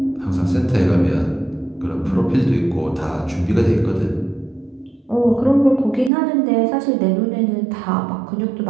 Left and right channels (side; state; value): left; drops out; at 6.1 s